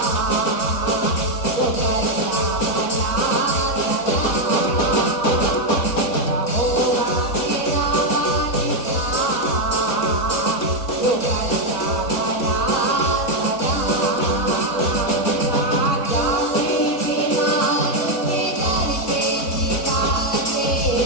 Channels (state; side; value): late; right; 4.0 ms